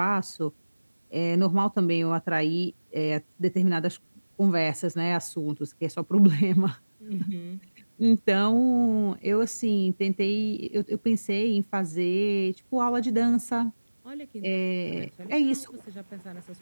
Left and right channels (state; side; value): inverted; both; correlation -1.00